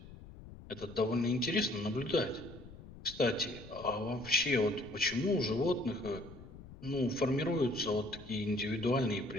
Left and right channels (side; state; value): left; noise; rumble, 16 dB below the sound